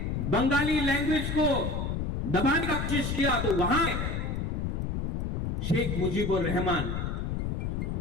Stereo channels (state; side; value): noise; left; rumble, 1 dB below the sound